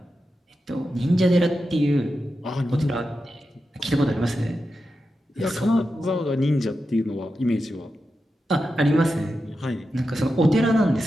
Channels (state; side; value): normal; both; correlation 0.90